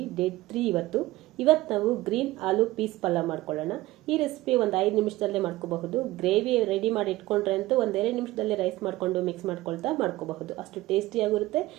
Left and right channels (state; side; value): quieter; left; 17.9 dB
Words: day 3 ಇವತ್ತು ನಾವು green ಆಲೂ piece ಪಲ್ಯ ಮಾಡ್ಕೊಳ್ಳೋಣ. ಈ ರೆಸಿಪಿ ಒಂದು 5 ನಿಮಿಷದಲ್ಲೇ ಮಾಡ್ಕೋಬಹುದು. ಗ್ರೇವಿ ರೆಡಿ ಮಾಡಿ ಇಟ್ಕೊಂಡ್ರೆ ಅಂತೂ ಒಂದೆರಡು ನಿಮಿಷದಲ್ಲಿ ರೈಸ್ ಮಾಡ್ಕೊಂಡು ಮಿಕ್ಸ್ ಮಾಡ್ಕೋಬಹುದು. ಅಷ್ಟು ಟೇಸ್ಟಿಯಾಗಿರುತ್ತೆ,